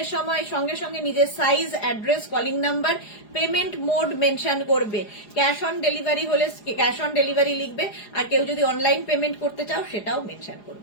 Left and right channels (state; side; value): late; right; 4.9 ms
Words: এর সময় সঙ্গে সঙ্গে নিজের size, address, calling number, payment mode mention করবে। ক্যাশ অন ডেলিভারি হলে ক্যাশ অন ডেলিভারি লিখবে, আর কেউ যদি অনলাইন পেমেন্ট করতে চাও সেটাও মেনশন